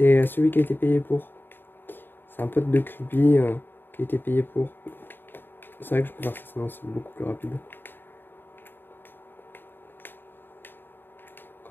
celui qui a été payé pour. C'est un pote de Creepy qui a été payé pour. C'est vrai que je peux faire ça, sinon c'est beaucoup plus rapide.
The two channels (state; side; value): late; right; 0.096 ms